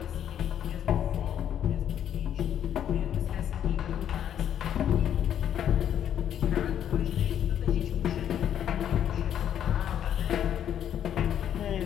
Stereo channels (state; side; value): quieter; right; 9.8 dB